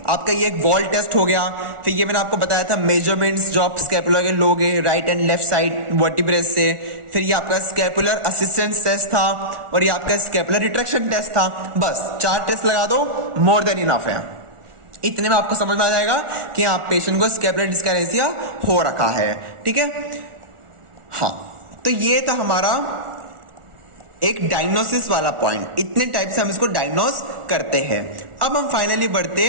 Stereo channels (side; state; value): left; late; 1.4 ms